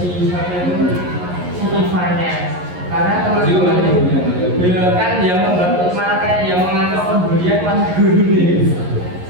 Ivannya. Karena teman-teman ya kan yang membantu malah kayak yang mengatur pembulian mas guru nih.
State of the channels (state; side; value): late; left; 11 ms